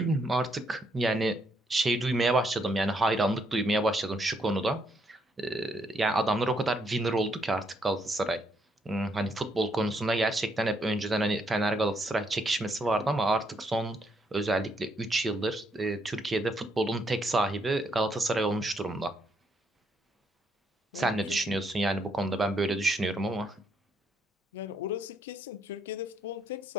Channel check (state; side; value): normal; both; correlation 0.74